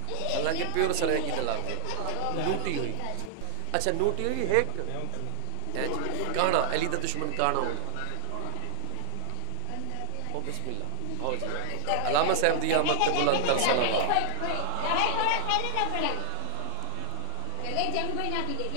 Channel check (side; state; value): both; different; correlation 0.00